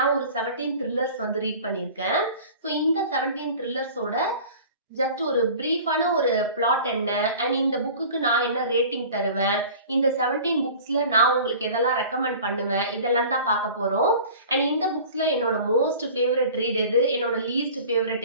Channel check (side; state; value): both; inverted; correlation -0.42